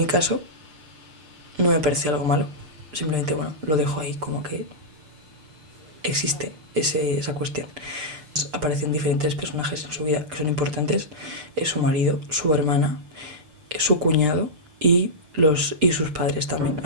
caso, no me parece algo malo. Simplemente, bueno, lo dejo ahí como que existe esa cuestión. Aparecen diferentes personajes en su vida que son importantes. Es su marido, su hermana, su cuñado y sus padres también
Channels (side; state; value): left; late; 6.7 ms